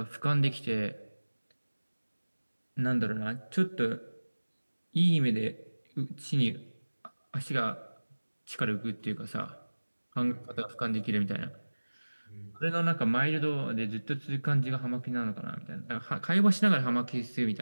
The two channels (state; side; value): inverted; both; correlation -1.00